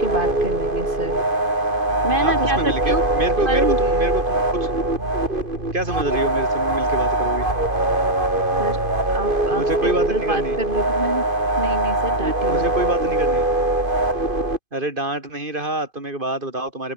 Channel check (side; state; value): left; late; 2.5 ms